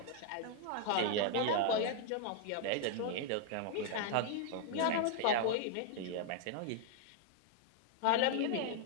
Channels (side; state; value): both; different; correlation 0.00